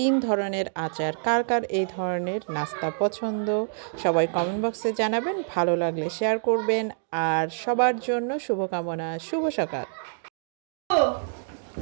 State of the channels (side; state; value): left; silent; digital silence